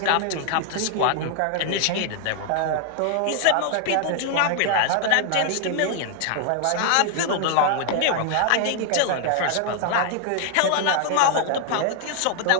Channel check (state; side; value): different; both; correlation 0.00